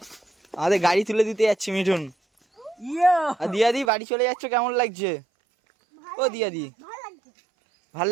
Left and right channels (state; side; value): drops out; left; at 3.9 s